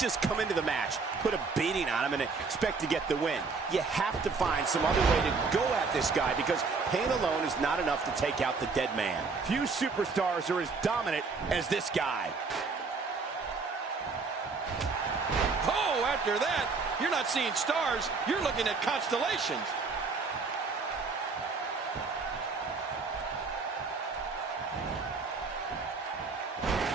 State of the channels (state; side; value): quieter; left; 4.5 dB